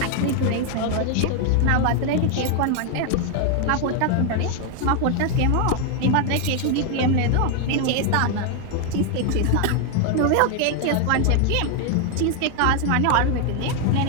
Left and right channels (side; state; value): both; different; correlation 0.00